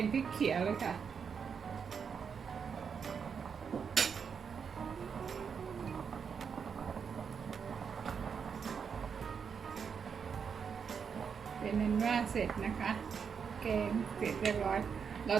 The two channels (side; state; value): left; quieter; 6.5 dB